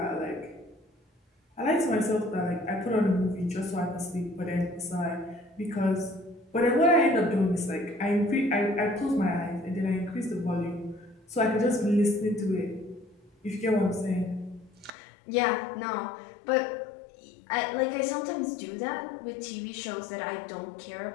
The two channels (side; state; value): right; drops out; at 14.9 s